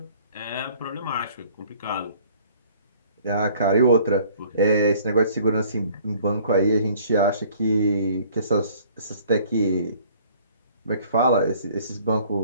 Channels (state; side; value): inverted; both; correlation -0.55